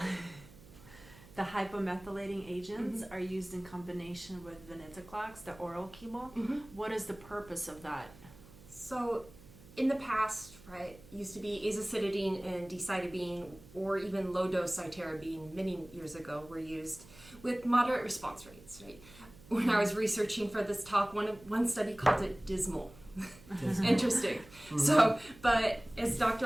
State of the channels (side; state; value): right; noise; hum, 21 dB below the sound